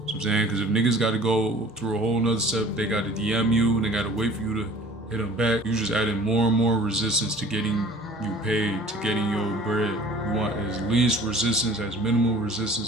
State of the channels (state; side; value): normal; both; correlation 0.47